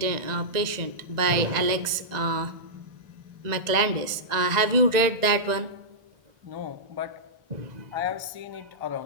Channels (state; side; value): late; left; 1.9 ms